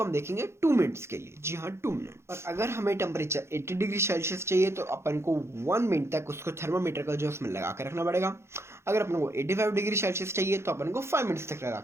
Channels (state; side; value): late; left; 0.13 ms